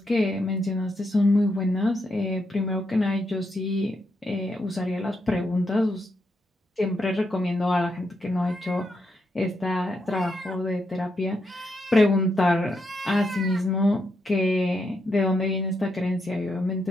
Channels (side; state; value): both; normal; correlation 0.81